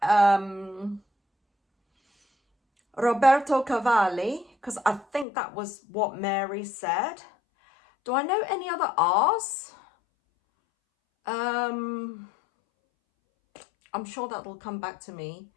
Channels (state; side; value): drops out; right; at 5.2 s